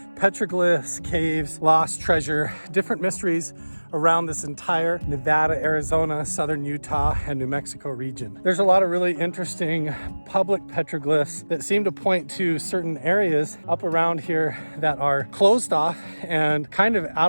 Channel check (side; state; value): both; inverted; correlation -1.00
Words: petroglyphs, caves, lost treasure, different mysteries around this entire Nevada, Arizona, southern Utah, and New Mexico region. There's a lot of really interesting public petroglyphs that seem to point to certain areas up around here that are closed off and kind of